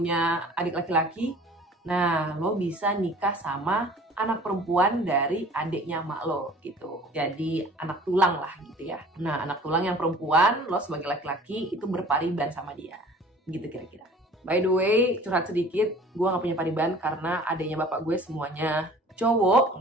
adik laki-laki, nah lo bisa nikah sama anak perempuan dari adiknya emak lo gitu. Jadi anak tulang lah gitu ya. Nah anak tulang yang perempuan, lo sebagai laki-laki itu berpariban sama dia. Gitu kira-kira. By the way, curhat sedikit, gue gak punya pariban karena adanya bapak gue semuanya cowok,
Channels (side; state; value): both; normal; correlation 0.47